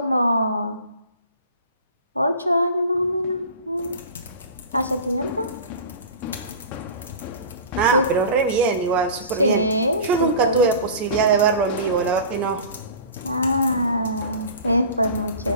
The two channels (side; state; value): both; inverted; correlation -0.37